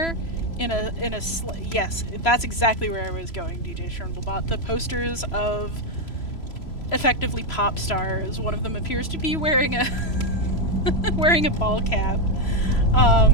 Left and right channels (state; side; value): late; right; 3.0 ms